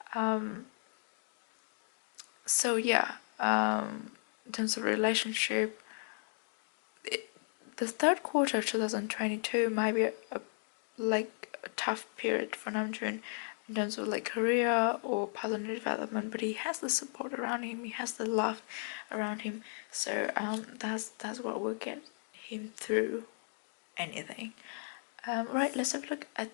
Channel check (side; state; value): right; silent; 54 dB below the other